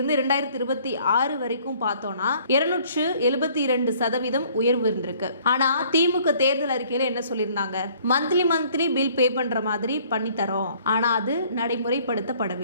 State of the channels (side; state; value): both; inverted; correlation -0.58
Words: 2026 வரைக்கும் பார்த்தோம்னா 272% உயர்வு இருந்திருக்கு. ஆனா திமுக தேர்தல் அறிக்கையில என்ன சொல்லியிருந்தாங்க? மந்த்லி பில் பே பண்ற மாதிரி பண்ணி தரோம். ஆனா அது